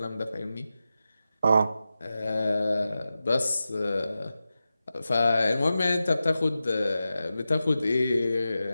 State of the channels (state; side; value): inverted; both; correlation -0.93